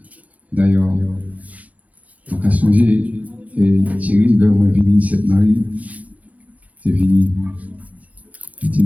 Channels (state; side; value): late; left; 0.072 ms